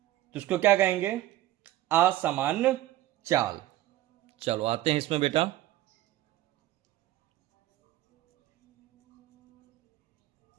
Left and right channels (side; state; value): left; quieter; 15.1 dB